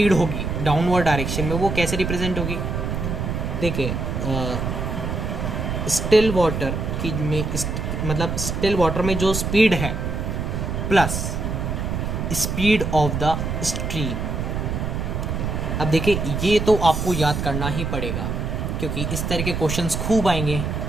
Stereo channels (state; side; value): noise; right; rumble, 2 dB below the sound